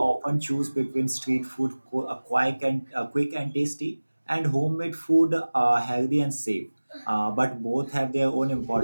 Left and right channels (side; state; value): both; inverted; correlation -1.00